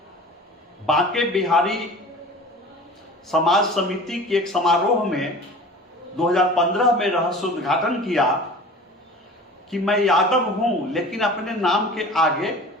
बांके बिहारी समाज समिति के एक समारोह में 2015 में रहस्योद्घाटन किया कि मैं यादव हूं, लेकिन अपने नाम के आगे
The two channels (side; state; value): both; normal; correlation 0.40